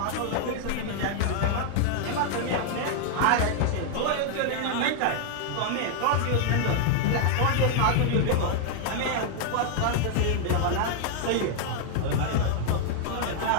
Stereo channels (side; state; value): both; different; correlation 0.00